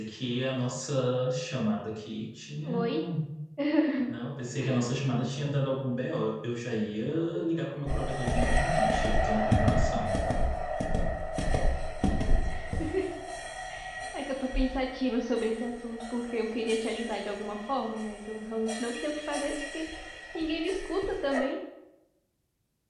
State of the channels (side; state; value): both; identical; correlation 1.00